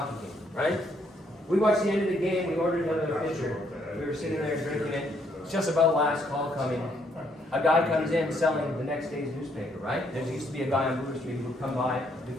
game. Right? We watched the end of the game, we ordered another pitcher. We were sitting there drinking it. It's just about last call coming. a guy comes in selling the next day's newspaper, right? There used to be a guy on Brewer Street who would come by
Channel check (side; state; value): both; normal; correlation 0.71